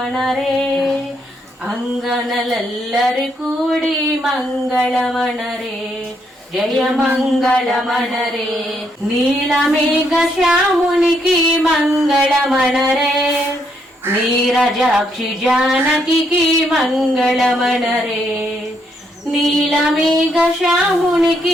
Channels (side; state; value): both; normal; correlation 0.75